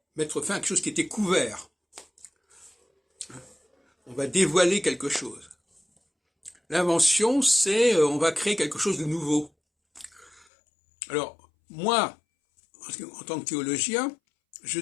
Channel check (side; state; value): right; drops out; at 10.5 s